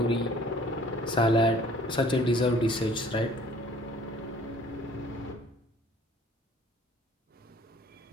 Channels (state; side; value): normal; both; correlation 0.54